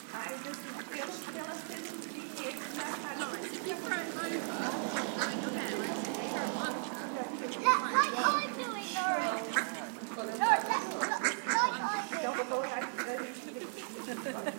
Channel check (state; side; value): silent; left; digital silence